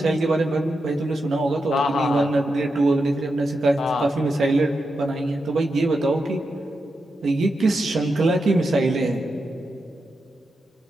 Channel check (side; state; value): both; normal; correlation 0.87